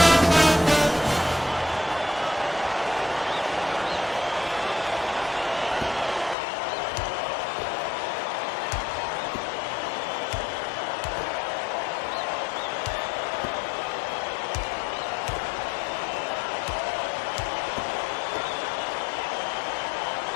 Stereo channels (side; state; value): right; drops out; at 6.4 s